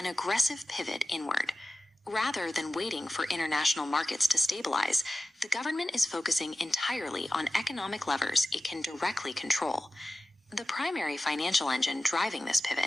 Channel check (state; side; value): normal; both; correlation 0.94